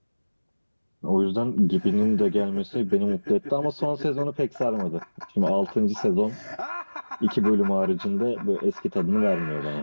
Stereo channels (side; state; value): both; inverted; correlation -1.00